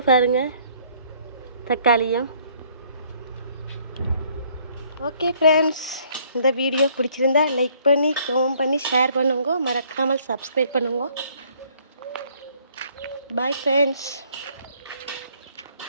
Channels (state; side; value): inverted; both; correlation -0.62